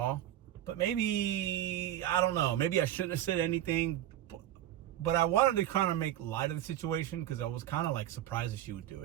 but maybe, I don't know, maybe I shouldn't have said anything, but I wanted to kind of make light of the situation because I was kind of like surprised that she would do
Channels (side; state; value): left; quieter; 12.3 dB